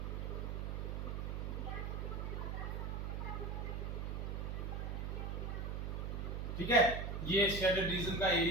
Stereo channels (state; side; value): noise; right; hum, 2 dB below the sound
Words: ठीक है, ये शेडेड रीजन का